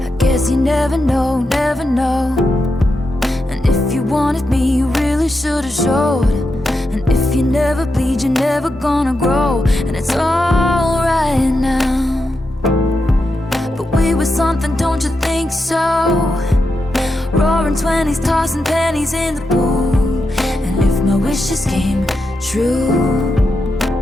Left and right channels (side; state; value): both; normal; correlation 0.87